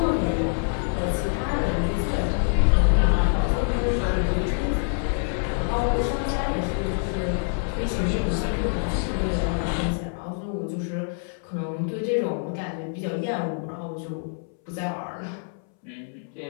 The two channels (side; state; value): right; silent; 61 dB below the other